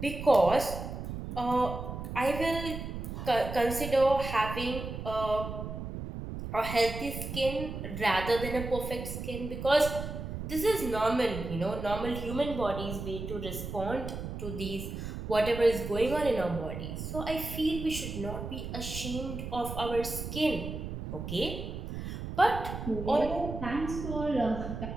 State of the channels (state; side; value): noise; right; rumble, 7 dB below the sound